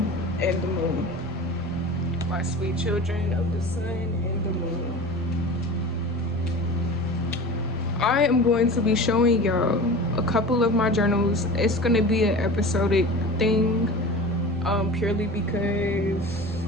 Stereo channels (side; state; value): both; normal; correlation 0.35